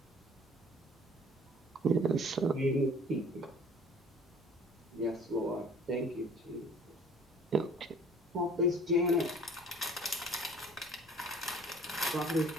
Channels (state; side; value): normal; both; correlation 0.51